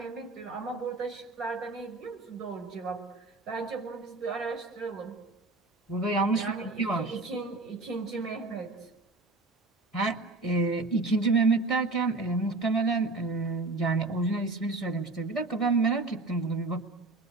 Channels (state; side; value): quieter; left; 3.3 dB